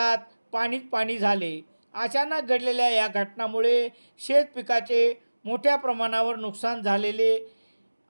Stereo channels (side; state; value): both; inverted; correlation -1.00